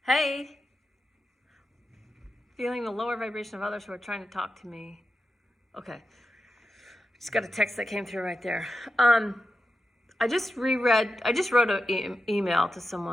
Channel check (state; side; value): normal; both; correlation 0.90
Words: Hey, feeling the lower vibration of others who are trying to talk to me. Okay, just got a text that came through right there. I just wrote an email to